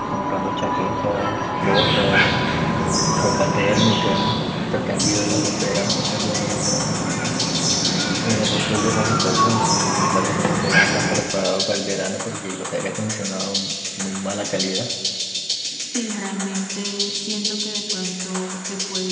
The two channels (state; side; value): identical; both; correlation 1.00